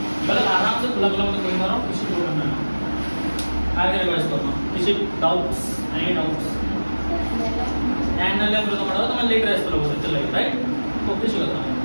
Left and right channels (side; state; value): both; inverted; correlation -1.00